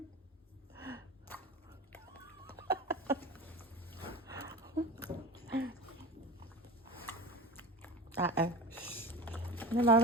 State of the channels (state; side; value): normal; both; correlation 0.28